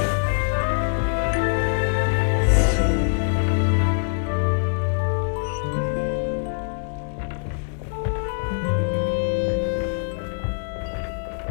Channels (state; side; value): silent; right; digital silence